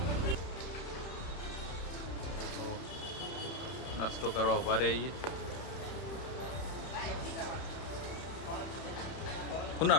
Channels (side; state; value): right; late; 31 ms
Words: તો નાસ્તો કરવા ઉભા રહીએ શું